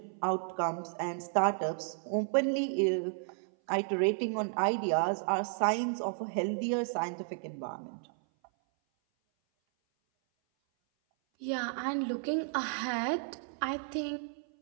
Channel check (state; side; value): silent; left; 56 dB below the other